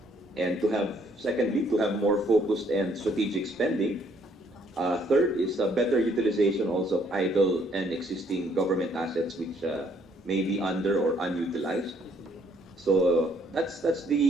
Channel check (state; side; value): normal; both; correlation 0.66